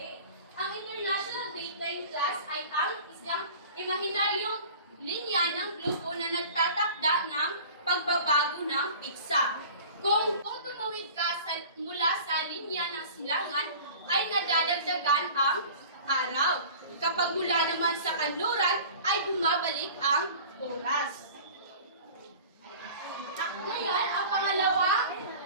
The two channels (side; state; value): both; inverted; correlation -0.41